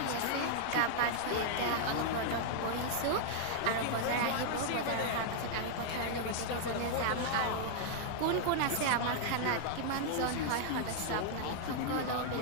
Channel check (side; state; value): both; different; correlation -0.01